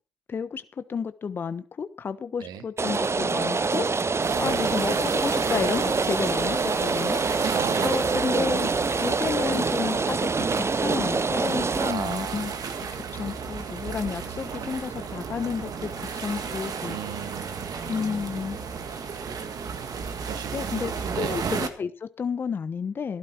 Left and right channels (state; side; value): normal; both; correlation 0.61